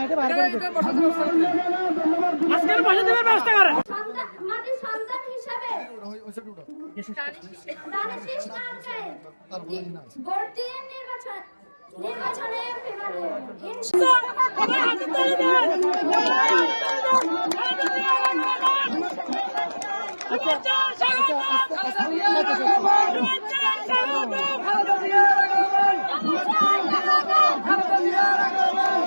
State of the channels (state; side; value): inverted; both; correlation -1.00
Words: বাইরে করে দেন। আজকের বসে দেওয়ার ব্যবস্থা করে মাটির সন্তান হিসাবে দানিশ নামকে ভর্তি নির্বাচনে